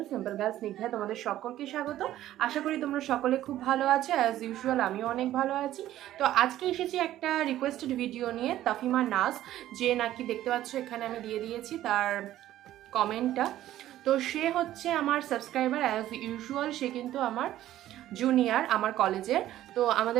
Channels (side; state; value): left; quieter; 13.5 dB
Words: simple girls Snigdha. তোমাদের সকলকে স্বাগত। আশা করি তোমরা সকলে খুব ভালো আছো। অ্যাজ ইউজুয়াল আমিও অনেক ভালো আছি। তো আজকে এসেছি একটা রিকোয়েস্টেড ভিডিও নিয়ে, তাফিমা নাজ, যে নাকি দেখতে পাচ্ছ এখানে আমি দিয়ে দিয়েছি তার কমেন্টটা। তো সে হচ্ছে আমার সাবস্ক্রাইবার অ্যাজ ইউজুয়াল। সে কিন্তু আমার জুনিয়র আমার কলেজের। তো